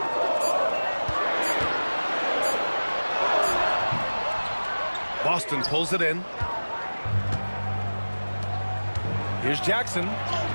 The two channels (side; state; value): both; inverted; correlation -1.00